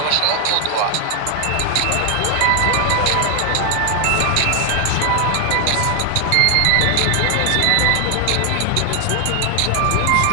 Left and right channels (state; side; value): different; both; correlation 0.00